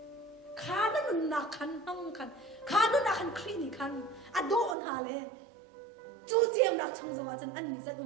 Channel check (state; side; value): drops out; left; at 4.8 s